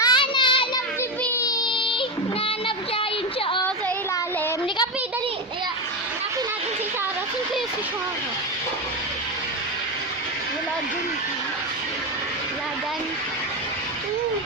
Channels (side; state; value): both; normal; correlation 0.15